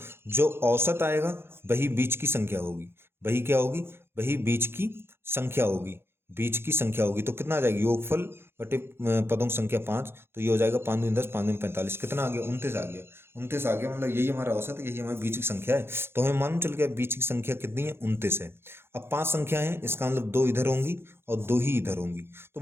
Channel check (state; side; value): late; left; 0.11 ms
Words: जो औसत आएगा वही बीच की संख्या होगी, वही क्या होगी, वही बीच की संख्या होगी, बीच की संख्या होगी। तो कितना आ जाएगी, योगफल बटे पदों की संख्या 5, तो ये हो जाएगा 5 दूनी 10, 5 दूनी 45, कितना आ गया 29 आ गया, 29 आ गया। मतलब यही हमारा औसत है, यही हमारी बीच की संख्या है। तो हमें मालूम चल गया बीच की संख्या कितनी है, 29 है। अब 5 संख्या है, इसका मतलब 2 इधर होंगी और 2 ही इधर होंगी, तो